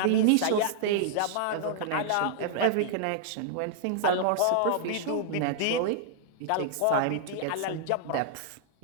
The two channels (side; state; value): both; different; correlation -0.01